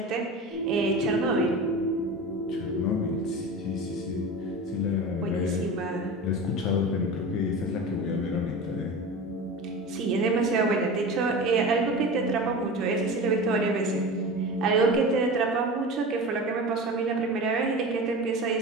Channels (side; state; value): both; normal; correlation 0.31